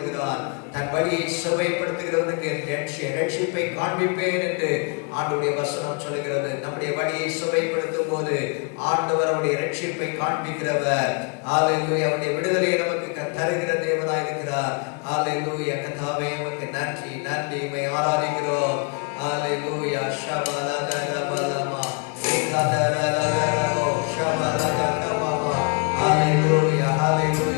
தன் வழியை செவ்வைப்படுத்துகிறவனுக்கு ரட்சிப்பை காண்பிப்பேன் என்று ஆண்டவருடைய வசனம் சொல்லுகிறது. நம்முடைய வழியை செவ்வைப்படுத்தும் போது ஆண்டவர் அவருடைய ரட்சிப்பை காண்பிக்கிறவர். ஹல்லேலூயா. அவருடைய விடுதலையை நமக்கு தருகிற தேவனாய் இருக்கிறார். ஹல்லேலூயா. கர்த்தாவே உமக்கு நன்றி, நன்றி. உம்மை ஆராதிக்கிறோம். ஹல்லேலூயா. ஷபலதரபலமா ஏகதரலதரோ ஷபலதரபமா. ஹல்லேலூயா,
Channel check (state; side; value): quieter; right; 35.3 dB